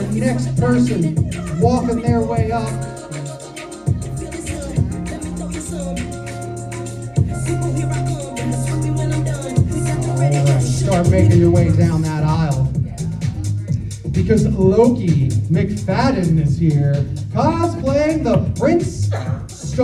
next person walking their way up. Alright, start making your way down that aisle. Because Loki McFadden is here, cosplaying the Prince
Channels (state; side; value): identical; both; correlation 1.00